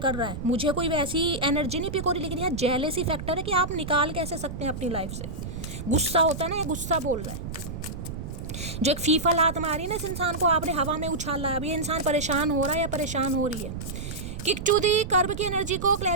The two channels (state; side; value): noise; right; rumble, 7 dB below the sound